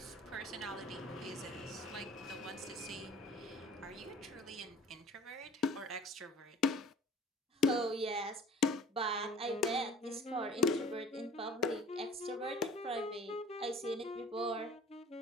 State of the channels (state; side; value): normal; both; correlation 0.46